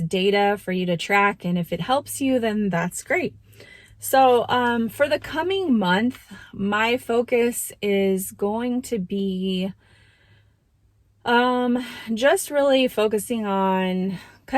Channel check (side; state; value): both; identical; correlation 1.00